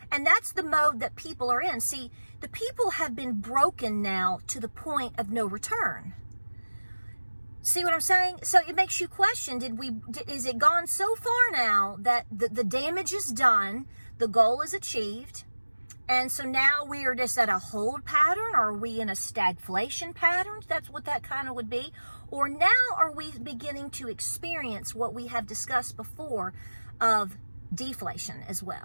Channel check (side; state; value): both; inverted; correlation -1.00